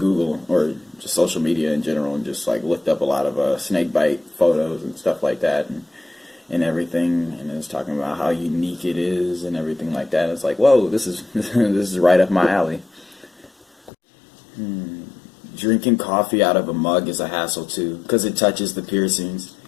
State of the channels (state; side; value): drops out; right; at 13.9 s